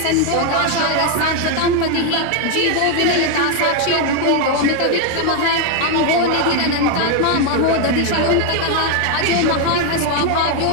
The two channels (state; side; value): different; both; correlation 0.01